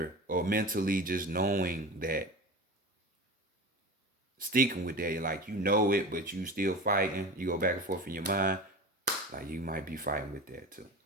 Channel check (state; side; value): normal; both; correlation 0.31